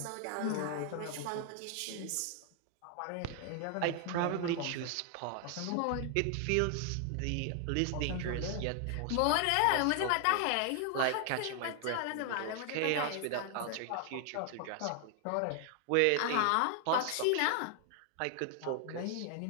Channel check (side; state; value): both; different; correlation 0.00